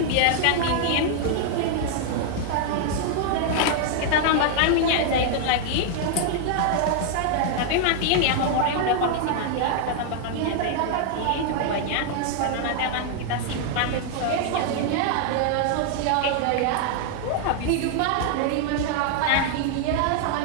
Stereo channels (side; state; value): both; different; correlation 0.00